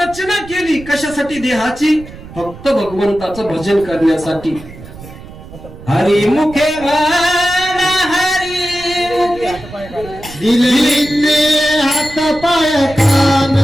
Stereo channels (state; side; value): noise; right; rumble, 16 dB below the sound